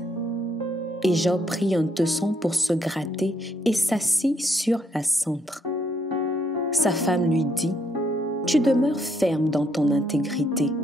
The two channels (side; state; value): both; normal; correlation 0.73